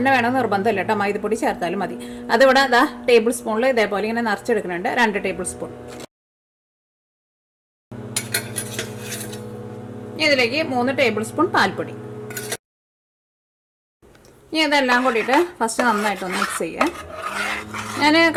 വേണമെന്ന് നിർബന്ധമില്ല കേട്ടോ, മൈദപ്പൊടി ചേർത്താലും മതി. അതിവിടെ ടേബിൾ സ്പൂണിൽ ഇതേപോലെ ഇങ്ങനെ നിറച്ചെടുക്കുന്നുണ്ട്, 2 ടേബിൾ സ്പൂൺ. ഇതിലേക്ക് 3 ടേബിൾ സ്പൂൺ പാൽപ്പൊടി. ഇനി ഇതെല്ലാം കൂടിയിട്ട് ഫസ്റ്റ് നന്നായിട്ടൊന്ന് മിക്സ് ചെയ്യുക. ഞാൻ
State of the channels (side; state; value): both; identical; correlation 1.00